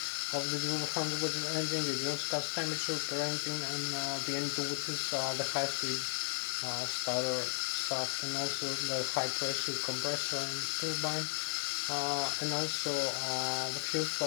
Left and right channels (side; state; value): right; silent; digital silence